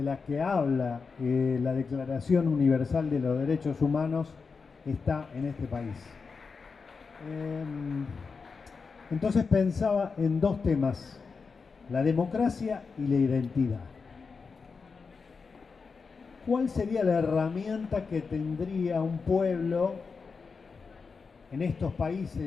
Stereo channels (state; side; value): quieter; right; 5.0 dB